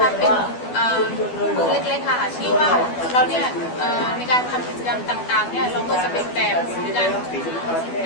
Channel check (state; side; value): late; right; 12 ms